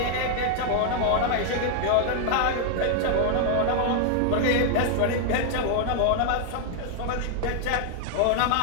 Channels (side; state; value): both; different; correlation 0.00